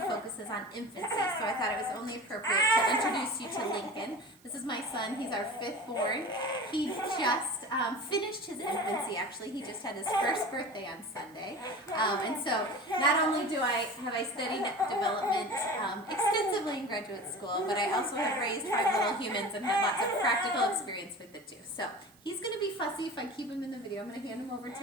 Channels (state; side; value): noise; right; hiss, 29 dB below the sound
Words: focuses on infancy, so I thought it was only appropriate to introduce you to Lincoln. This is my son, he's our 5th born. He just finished his infancy, actually. He just had his first birthday on Sunday. And so not only have I studied development extensively in graduate school, but I also have raised 5 little humans and had lots of practical experience with it too. So he's going to be fussy if I keep him in the video. I'm going to hand him over